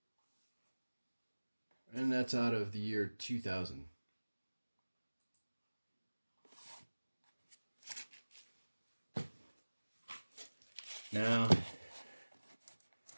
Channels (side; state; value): both; inverted; correlation -1.00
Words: And that's out of the year 2000. Now,